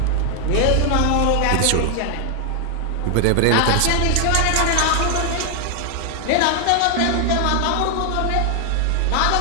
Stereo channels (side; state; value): both; different; correlation 0.00